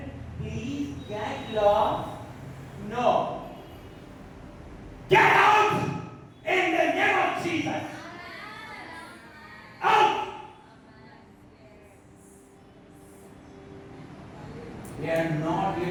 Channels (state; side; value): identical; both; correlation 1.00